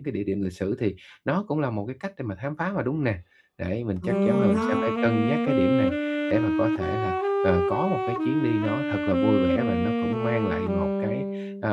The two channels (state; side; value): identical; both; correlation 1.00